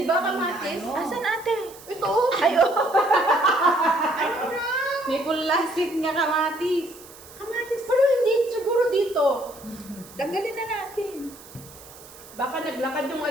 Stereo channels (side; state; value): right; noise; hiss, 20 dB below the sound